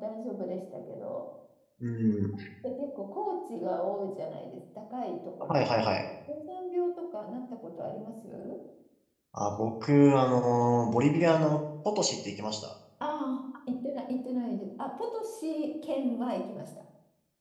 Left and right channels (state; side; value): identical; both; correlation 1.00